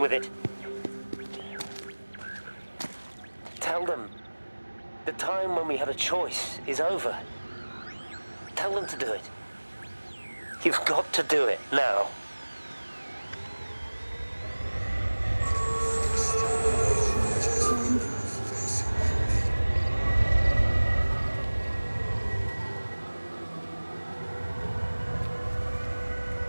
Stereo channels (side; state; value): both; inverted; correlation -1.00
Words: with it. Tell them the time when we had a choice is over. Tell Tell them to do it. You've got to do it, now.